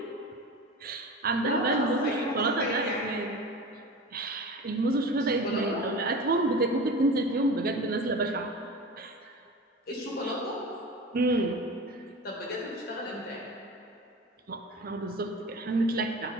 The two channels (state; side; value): normal; both; correlation 0.33